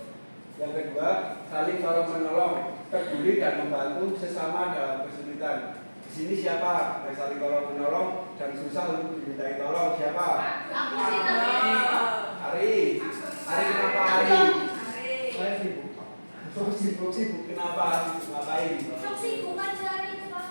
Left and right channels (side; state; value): both; inverted; correlation -1.00